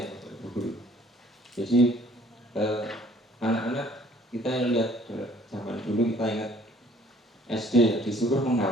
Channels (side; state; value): both; normal; correlation 0.57